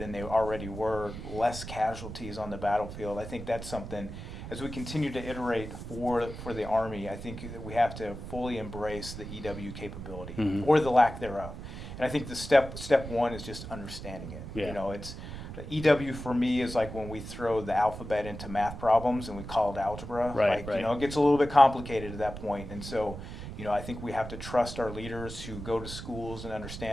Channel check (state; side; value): noise; right; rumble, 10 dB below the sound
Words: they already were, less casualties on the battlefield? I think that's something. As we continue to iterate for the Army, I think that we have to fully embrace the EW capability or the lack thereof. And I think the step one is just understanding it. Yeah. It's EW for me is like when we throw the alphabet into math problems and we call it algebra. Right. It gets a little bit complicated at that point. And so, I think we have to trust our leaders who go to schools and